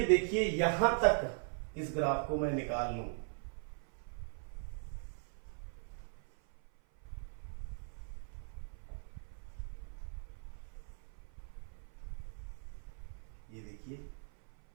देखिए यहां तक इस ग्राफ को मैं निकाल लूं, ये देखिए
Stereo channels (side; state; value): left; silent; 51 dB below the other